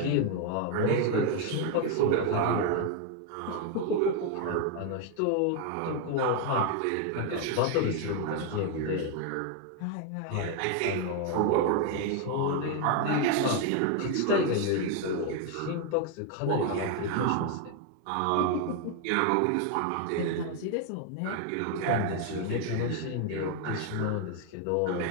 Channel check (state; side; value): different; both; correlation 0.01